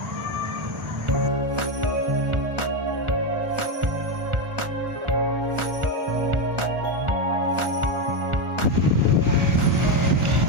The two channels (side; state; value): left; late; 1.4 ms